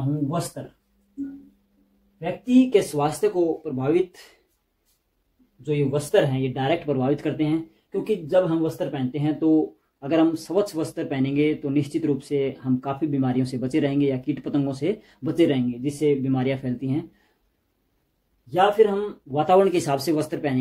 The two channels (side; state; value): both; identical; correlation 1.00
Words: वस्त्र। व्यक्ति के स्वास्थ्य को प्रभावित जो ये वस्त्र हैं ये डायरेक्ट प्रभावित करते हैं, क्योंकि जब हम वस्त्र पहनते हैं तो अगर हम स्वच्छ वस्त्र पहनेंगे तो निश्चित रूप से हम काफ़ी बीमारियों से बचे रहेंगे या कीट पतंगों से बचे रहेंगे जिससे बीमारियां फैलती हैं। या फिर हम वातावरण के हिसाब से वस्त्र